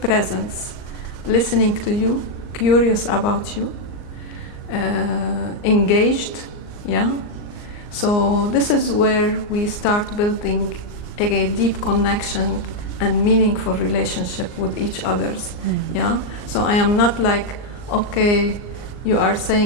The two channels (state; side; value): late; right; 39 ms